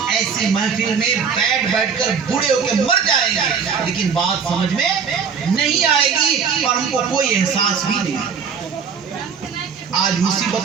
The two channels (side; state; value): left; quieter; 6.4 dB